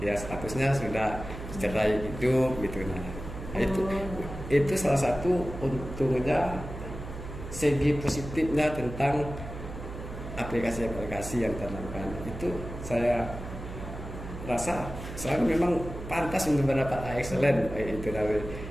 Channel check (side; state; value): right; noise; hum, 10 dB below the sound